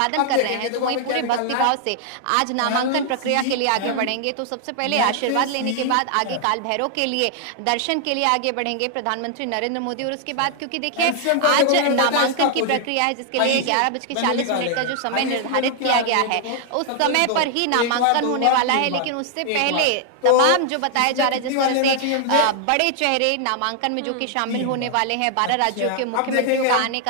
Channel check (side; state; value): both; different; correlation 0.00